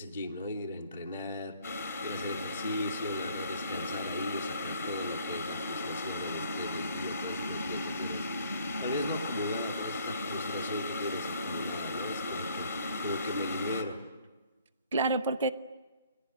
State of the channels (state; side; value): inverted; both; correlation -0.60